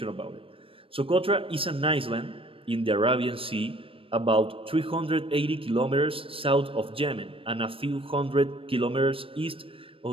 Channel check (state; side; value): late; left; 0.26 ms